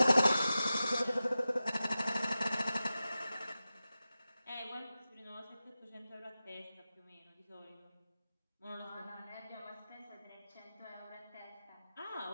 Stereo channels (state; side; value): inverted; both; correlation -0.94